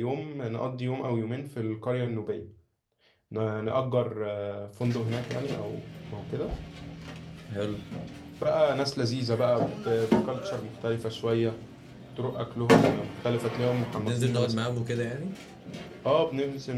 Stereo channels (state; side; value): identical; both; correlation 1.00